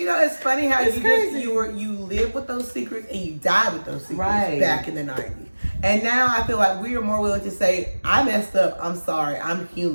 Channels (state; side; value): inverted; both; correlation -1.00